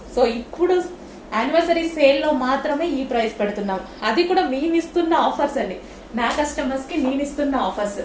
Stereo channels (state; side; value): identical; both; correlation 1.00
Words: సో ఇప్పుడు యానివర్సరీ సేల్ లో మాత్రమే ఈ ప్రైస్ పెడుతున్నాం. అది కూడా మేము ఇస్తున్న ఆఫర్స్ అండి, నా కస్టమర్స్ కి నేను ఇస్తున్న offers.